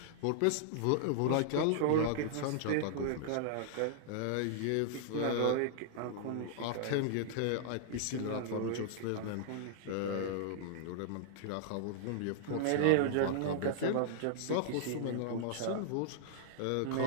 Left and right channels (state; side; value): different; both; correlation -0.01